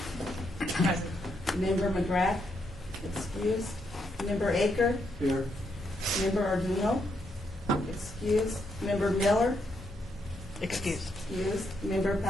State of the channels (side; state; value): both; normal; correlation 0.78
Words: Member McGrath? Excused. Member Aker? Here. Member Arduino? Excused. Member Miller? Excuse. Excused. Member